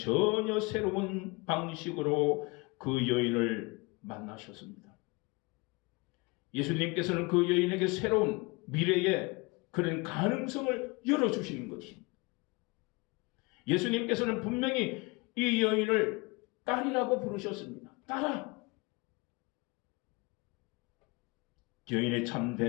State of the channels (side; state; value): right; quieter; 26.6 dB